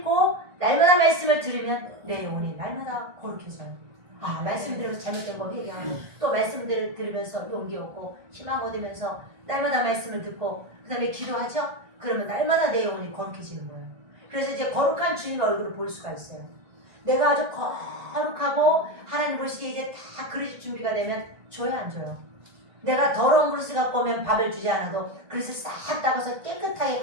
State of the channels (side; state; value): left; late; 1.5 ms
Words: 날마다 말씀을 들으면 내 영혼이 날마다 거룩해져요. 아, 말씀 들으면서 잘못된 거 회개하고 또 말씀들을 들으면서 용기 얻고 희망 얻으면서 날마다 말씀을 듣고 그 다음에 기도하죠? 그러면 날마다 내 영혼이 거룩해지는 거예요. 그래서 이제 거룩한 주님의 얼굴을 볼 수가 있어요. 내가 아주 거룩하고 하나님 보시기에 이제 다 그릇이 준비가 되면 줘야 안 줘요? 내가 더러운 그릇을 갖고 오면 밥을 주지 않아도 그릇을 싹 닦아서 깨끗하게